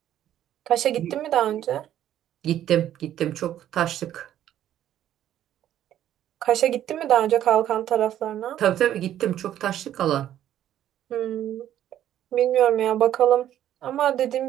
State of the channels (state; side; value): quieter; left; 11.6 dB